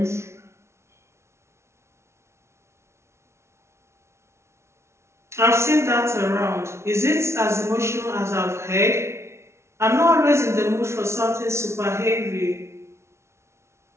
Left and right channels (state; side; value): late; left; 0.13 ms